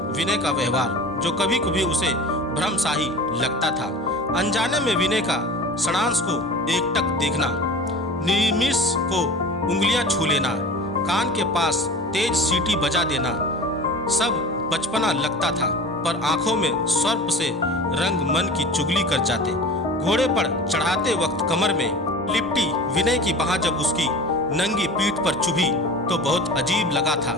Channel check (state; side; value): normal; both; correlation 0.37